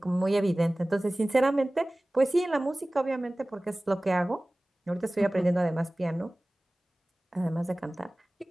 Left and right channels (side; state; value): both; normal; correlation 0.98